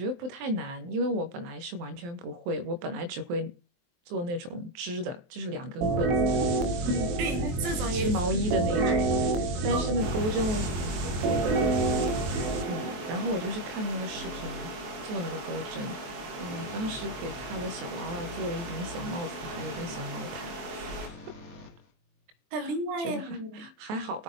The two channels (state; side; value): late; left; 23 ms